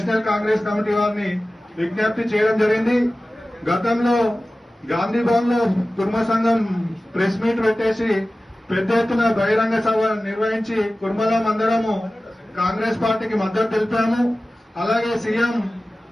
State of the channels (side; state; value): both; normal; correlation 0.96